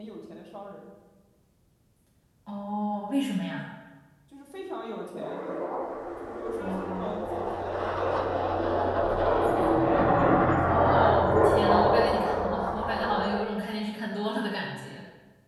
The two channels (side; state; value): both; identical; correlation 1.00